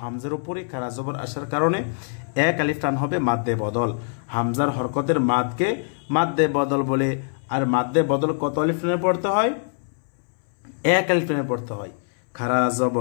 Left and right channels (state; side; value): silent; right; 63 dB below the other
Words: হামজার উপরে খারা জবর আসার কারণে এক আলিফ টান হবে মাদ্দে বদল। হামজার হরকতের মাদকে মাদ্দে বদল বলে। আর মাদ্দে বদল কত আলিফ টানে পড়তে হয়? এক আলিফ টানে পড়তে হয়। খারা